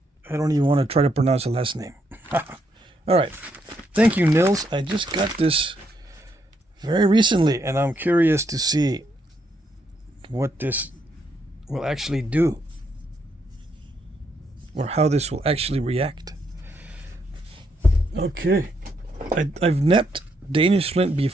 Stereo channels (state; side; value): normal; both; correlation 0.76